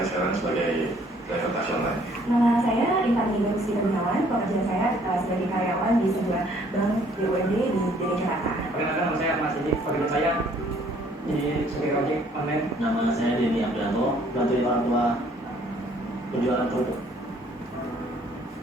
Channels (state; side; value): normal; both; correlation 0.61